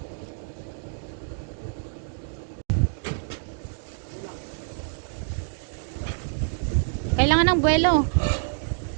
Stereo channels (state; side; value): silent; left; digital silence